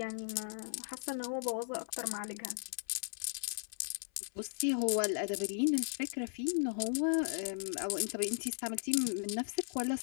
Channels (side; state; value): right; silent; 53 dB below the other